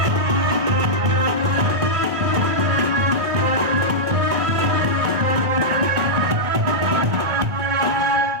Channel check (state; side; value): late; left; 1.8 ms